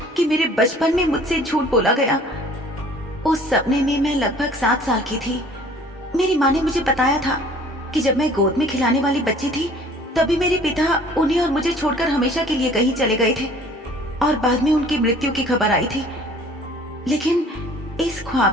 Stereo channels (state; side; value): normal; both; correlation 0.52